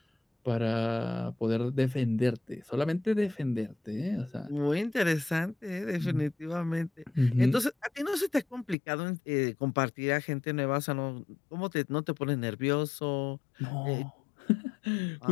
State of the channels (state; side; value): drops out; right; at 8.8 s